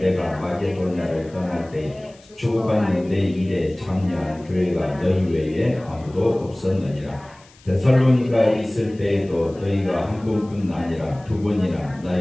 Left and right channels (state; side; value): noise; left; hiss, 27 dB below the sound